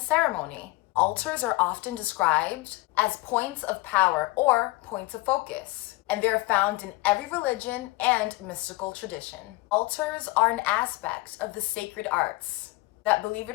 ceremony. Altars are often described as points of power or points of focus, and they're found in every religion and mystical tradition. Altars are an aspect of the sacred arts that, believe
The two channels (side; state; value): right; quieter; 21.1 dB